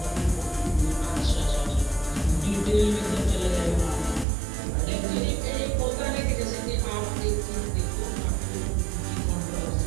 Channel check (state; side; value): drops out; left; at 4.2 s